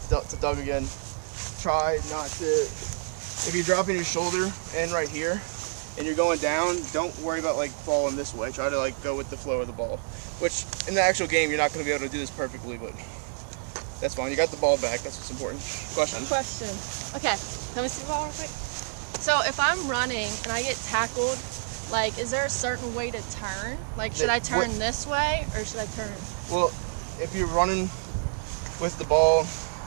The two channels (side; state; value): left; silent; digital silence